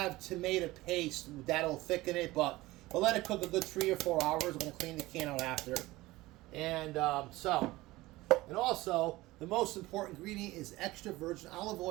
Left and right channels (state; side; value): quieter; left; 19.0 dB